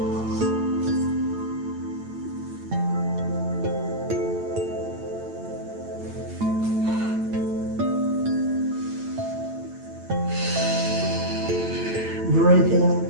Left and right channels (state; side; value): late; left; 8.9 ms